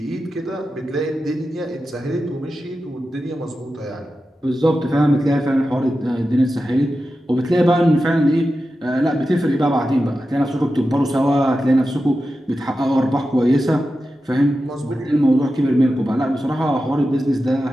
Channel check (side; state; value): both; normal; correlation 0.92